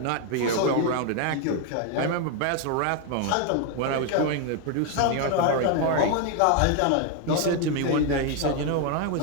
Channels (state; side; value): different; both; correlation 0.01